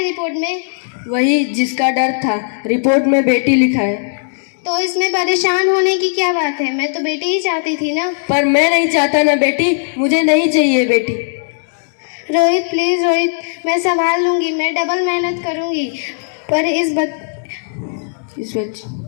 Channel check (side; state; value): right; silent; digital silence